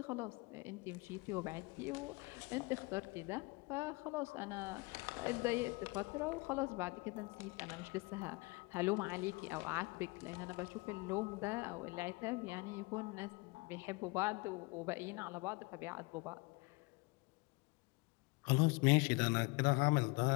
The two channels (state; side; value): quieter; right; 26.5 dB